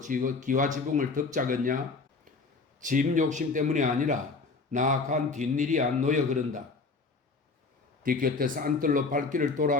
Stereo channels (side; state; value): right; quieter; 4.1 dB